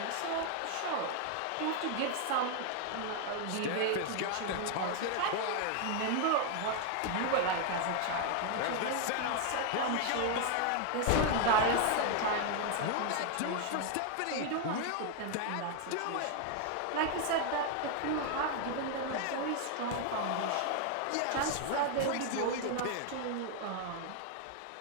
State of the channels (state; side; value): different; both; correlation 0.00